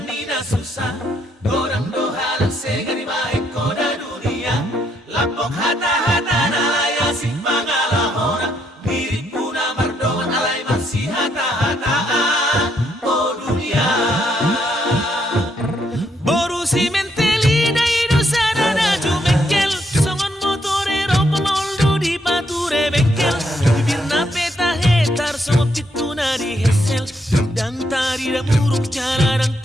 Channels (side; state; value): both; normal; correlation 0.75